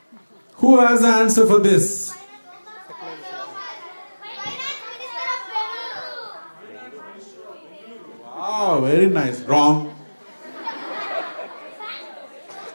Who has the answer for this? Wow, very nice. Wrong.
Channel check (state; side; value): inverted; both; correlation -1.00